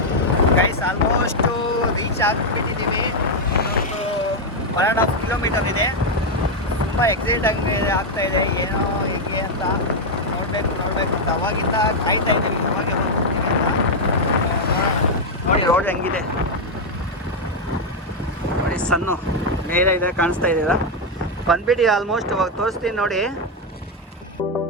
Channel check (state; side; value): normal; both; correlation 0.02